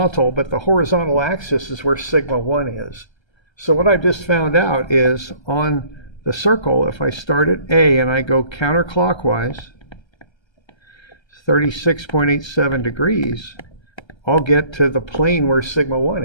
but the horizontal axis is where sigma 1 is. So what I've just found out is on the circle, if I start at A and I go counterclockwise, 36.87 degrees, I'll get to the plane where sigma 1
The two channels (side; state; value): right; late; 1.3 ms